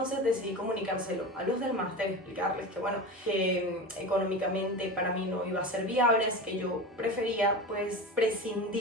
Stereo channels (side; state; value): both; normal; correlation 0.28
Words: decidí comunicárselo a los del máster, explicarles que bueno, que económicamente para mí no iba a ser viable, así que yo prefería pues